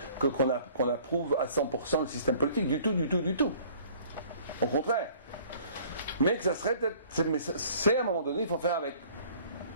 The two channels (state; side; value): inverted; both; correlation -0.53